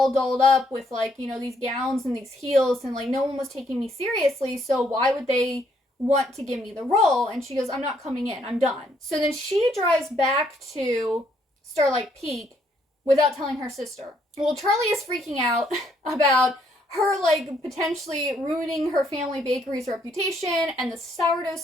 dolled up with, like, these gowns and these heels, and, like, no one was taking me seriously, so why would they want to give me the role? And she goes, I'm not coming in, I'm done. So then she drives back to Starlight Peak without telling her sister. Well, Charlie is freaking out about her, like, potentially ruining her family bakery's reputation, and the sourdough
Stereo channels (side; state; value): both; normal; correlation 0.70